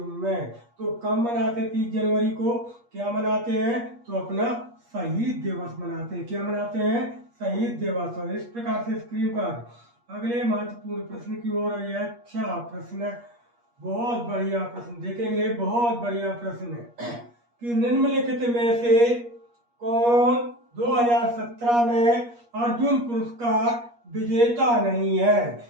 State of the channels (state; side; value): late; left; 8.4 ms